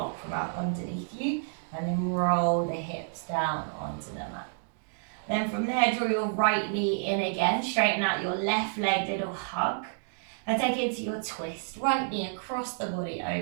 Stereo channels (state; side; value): silent; left; digital silence